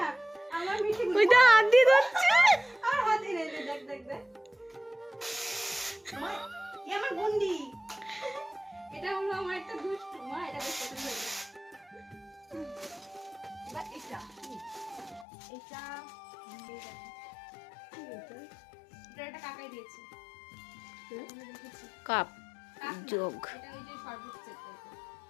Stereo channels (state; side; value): drops out; right; at 15.2 s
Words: আমার মিঠি ওই তো হাত দিয়ে ধরছে। আর হাতে নেই দেখ দেখ দেখ মা এ আমার গুন্ডি এটা হলো আমার একটা দুষ্টু মা এটা বেশ পছন্দ হয়েছে বা এটা এটা এটা একটা কাকাই দিয়েছে কাপ কাক না, যোগ এটা ওই যে শরবত সেট টাইপের